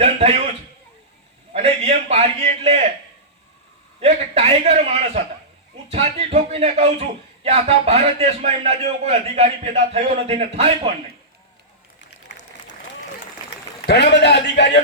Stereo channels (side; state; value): both; normal; correlation -0.17